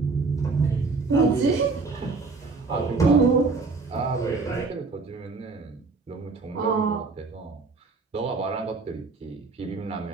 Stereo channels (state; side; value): quieter; left; 4.1 dB